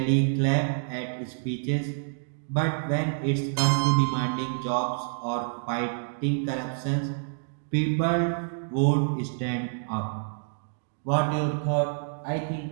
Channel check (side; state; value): left; silent; digital silence